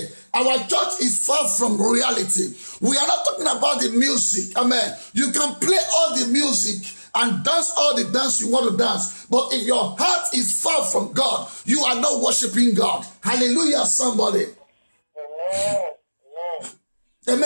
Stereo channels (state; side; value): inverted; both; correlation -1.00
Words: our church is far from reality. We are not talking about the music. Amen. You can play all the music and dance all the dance you want to dance. But if your heart is far from God, you are not worshiping God. Hallelujah, somebody. Amen.